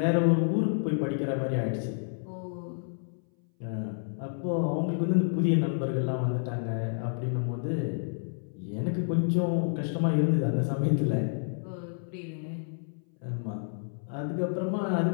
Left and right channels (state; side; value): silent; right; 58 dB below the other